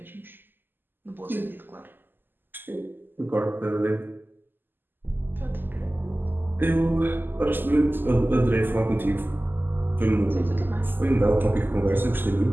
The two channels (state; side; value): late; left; 0.094 ms